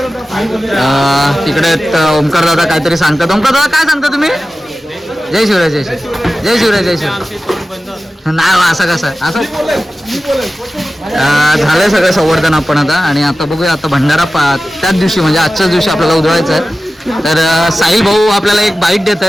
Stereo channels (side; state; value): both; normal; correlation 0.95